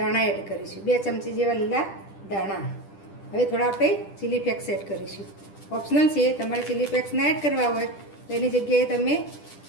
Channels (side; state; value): right; late; 10 ms